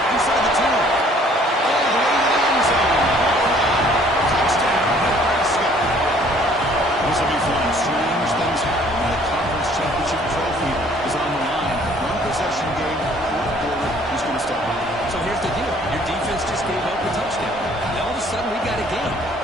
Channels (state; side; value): normal; both; correlation 0.58